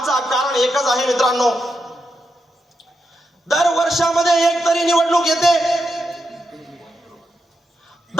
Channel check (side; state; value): both; normal; correlation 0.85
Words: कारण एकच आहे मित्रांनो, दर वर्षामध्ये एक तरी निवडणूक येते,